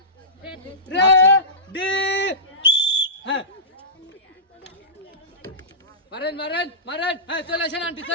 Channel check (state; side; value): normal; both; correlation -0.20